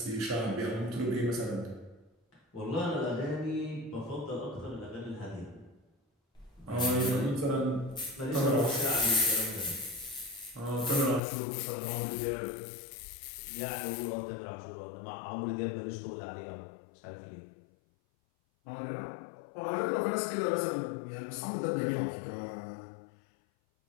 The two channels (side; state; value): right; drops out; at 11.2 s